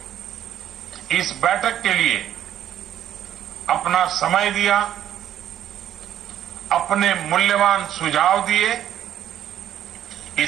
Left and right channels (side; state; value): left; quieter; 11.0 dB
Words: इस बैठक के लिए अपना समय दिया, अपने मूल्यवान सुझाव दिए।